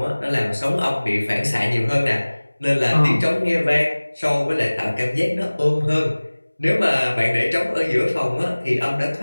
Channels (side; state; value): both; inverted; correlation -1.00